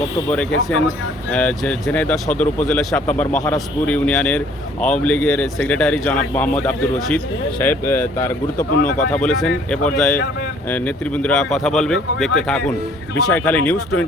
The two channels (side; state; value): both; normal; correlation 0.58